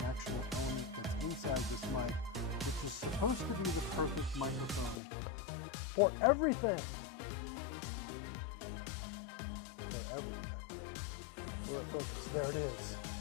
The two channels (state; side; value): drops out; right; at 5.0 s